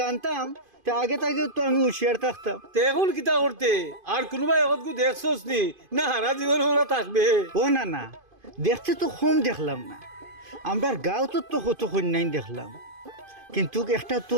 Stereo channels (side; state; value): left; late; 2.5 ms